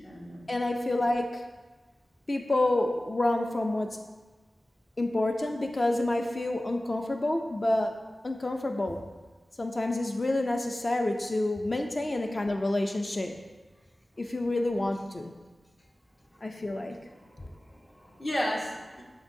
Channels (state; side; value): normal; both; correlation 0.97